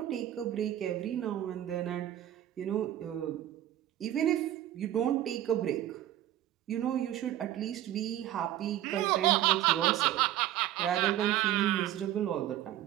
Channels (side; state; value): left; quieter; 12.9 dB